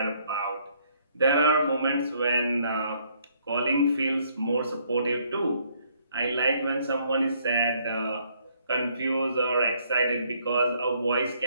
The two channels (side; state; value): both; inverted; correlation -0.66